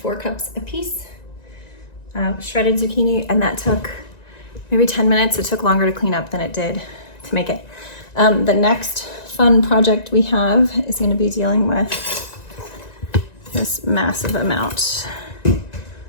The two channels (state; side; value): late; right; 1.9 ms